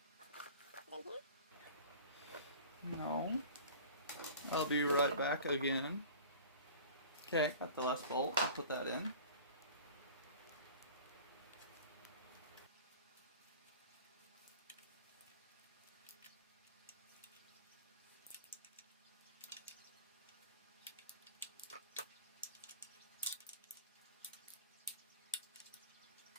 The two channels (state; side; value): inverted; both; correlation -0.41